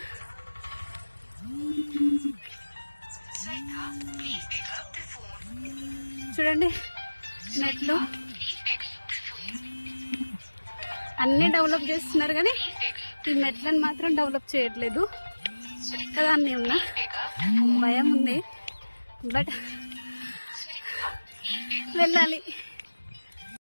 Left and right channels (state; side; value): inverted; both; correlation -1.00